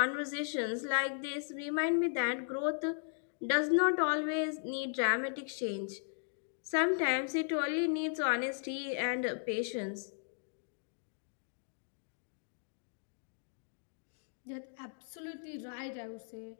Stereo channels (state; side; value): silent; right; digital silence